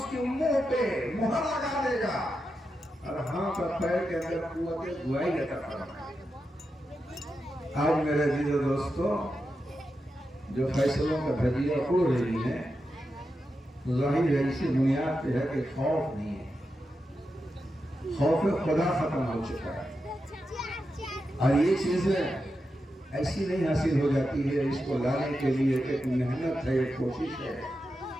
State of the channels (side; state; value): both; normal; correlation 0.88